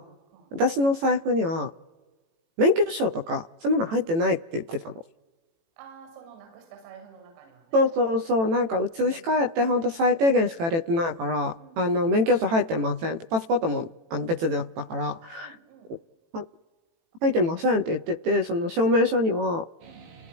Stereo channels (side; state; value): left; late; 18 ms